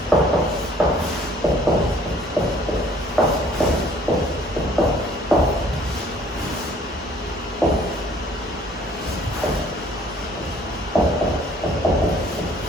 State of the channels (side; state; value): both; normal; correlation 0.58